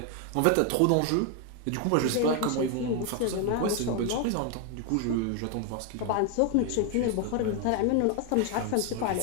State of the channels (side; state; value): both; different; correlation 0.01